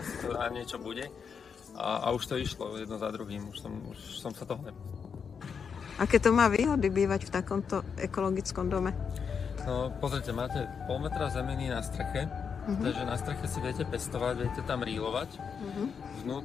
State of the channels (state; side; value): quieter; right; 6.4 dB